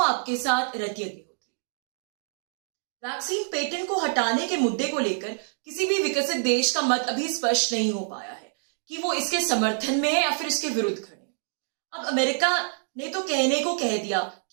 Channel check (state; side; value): silent; left; 60 dB below the other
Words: आपके साथ रतिया अग्निहोत्री। वैक्सीन पेटेंट को हटाने के मुद्दे को लेकर किसी भी विकसित देश का मत अभी स्पष्ट नहीं हो पाया है कि वो इसके समर्थन में है या फिर इसके विरुद्ध खड़े। अब अमेरिका ने तो कहने को कह दिया